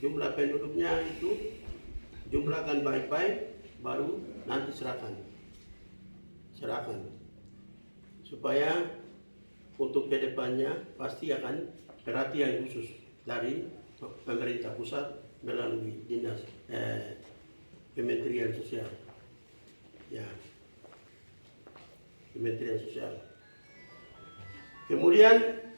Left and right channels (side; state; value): both; inverted; correlation -1.00